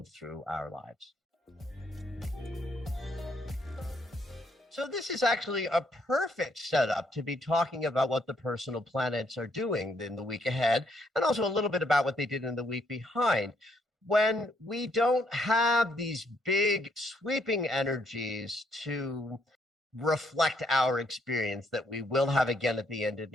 through our lives. So this is actually a perfect setup to be talking about what the personal planets are doing in the week ahead, and also a little bit about what they did in the week behind. When we don't have these big sweeping energies to reflect our experience that we will have again at the end of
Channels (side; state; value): both; normal; correlation 0.71